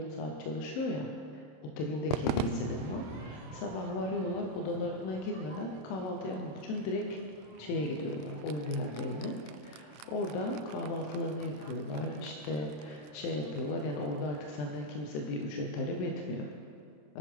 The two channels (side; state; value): right; late; 27 ms